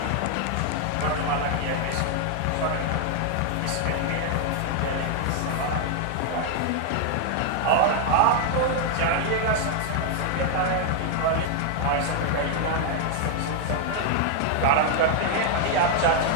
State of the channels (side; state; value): both; different; correlation 0.00